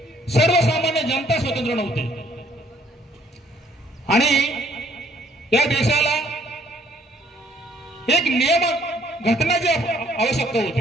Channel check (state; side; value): normal; both; correlation 0.63